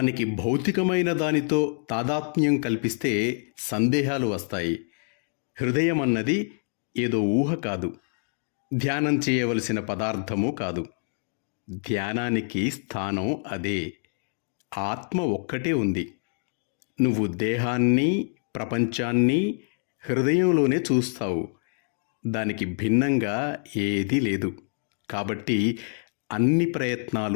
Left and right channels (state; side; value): silent; right; 61 dB below the other